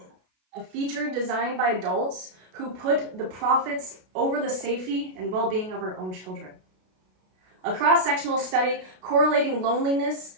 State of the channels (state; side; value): late; left; 32 ms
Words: A feature designed by adults who put the profits over the safety and well-being of our own children. A cross-sectional study correlating loneliness